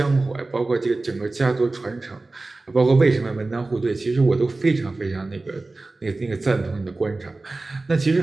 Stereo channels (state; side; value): quieter; left; 3.3 dB